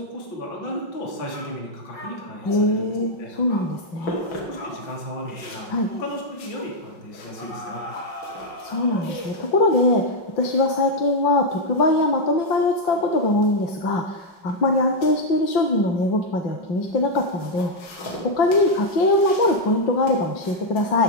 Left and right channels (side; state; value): right; late; 5.4 ms